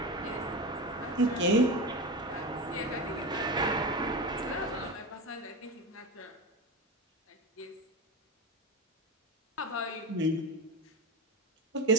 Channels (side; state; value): both; normal; correlation 0.21